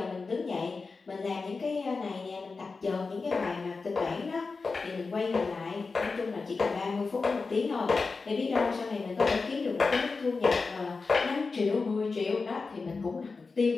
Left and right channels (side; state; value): right; quieter; 4.3 dB